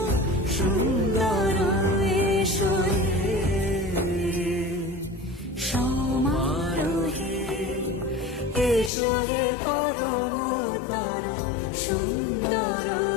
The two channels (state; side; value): drops out; right; at 8.9 s